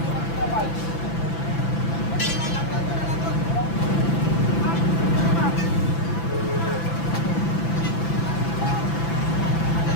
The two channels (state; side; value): late; right; 6.0 ms